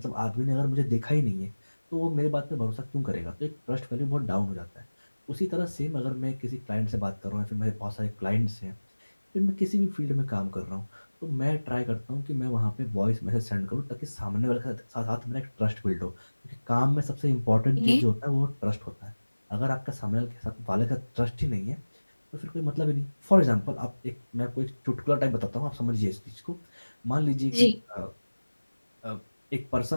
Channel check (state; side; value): inverted; both; correlation -1.00